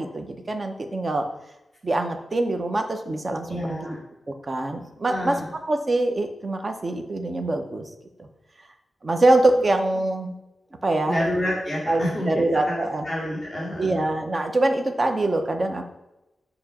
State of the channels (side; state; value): both; normal; correlation 0.93